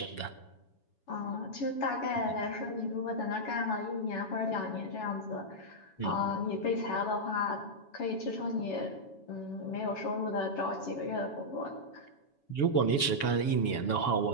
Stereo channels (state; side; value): late; right; 7.1 ms